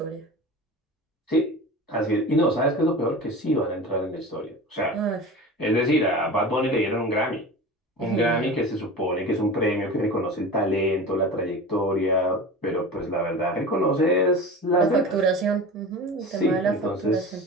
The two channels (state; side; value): normal; both; correlation 0.33